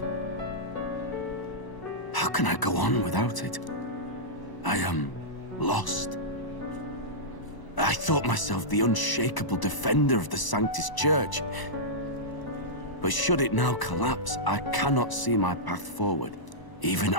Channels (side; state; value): right; late; 1.0 ms